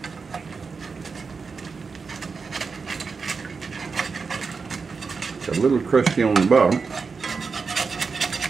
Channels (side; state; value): left; quieter; 5.0 dB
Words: It's a little crusty on the bottom.